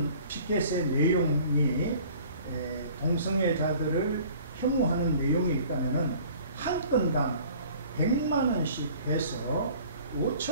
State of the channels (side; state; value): both; inverted; correlation -0.49